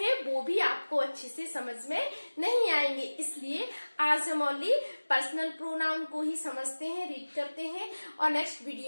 वो भी आपको अच्छे से समझ में नहीं आएंगे। इसलिए आज हम ओनली पर्सनल प्रोनाउन को ही समझते हैं, रीड करते हैं, और नेक्स्ट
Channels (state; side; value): inverted; both; correlation -1.00